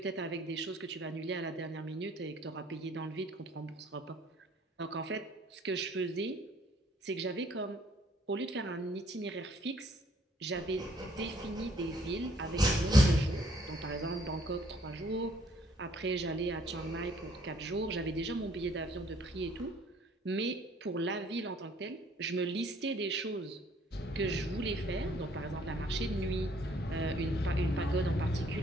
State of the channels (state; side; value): normal; both; correlation 0.62